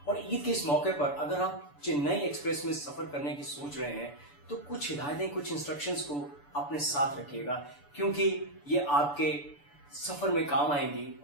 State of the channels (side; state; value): right; late; 6.9 ms